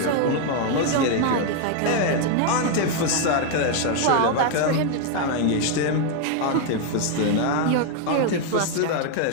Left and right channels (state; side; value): different; both; correlation 0.01